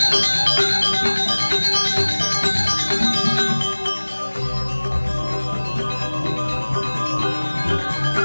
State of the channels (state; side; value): inverted; both; correlation -1.00